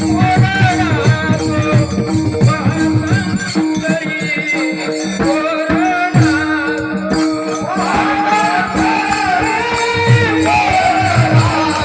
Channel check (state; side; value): identical; both; correlation 1.00